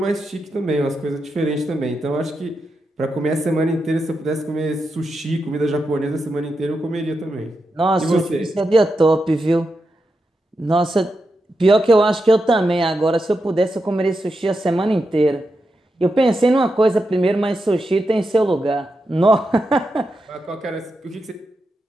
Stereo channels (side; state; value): both; normal; correlation 0.87